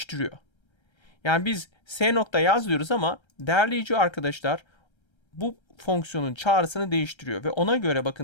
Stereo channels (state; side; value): late; right; 1.3 ms